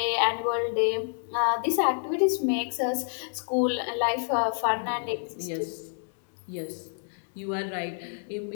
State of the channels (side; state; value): right; silent; 59 dB below the other